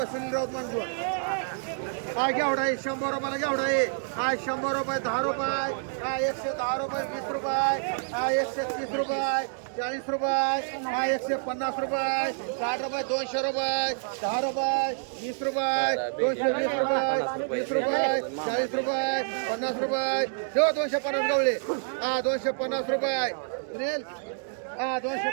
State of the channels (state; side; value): silent; left; digital silence